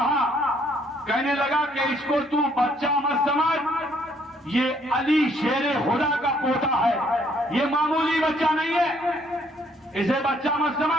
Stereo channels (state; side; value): normal; both; correlation 0.66